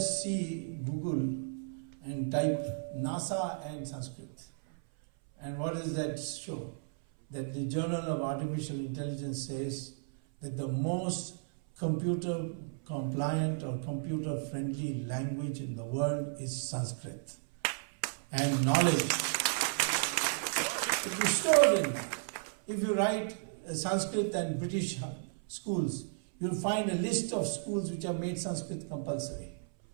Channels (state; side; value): silent; left; 55 dB below the other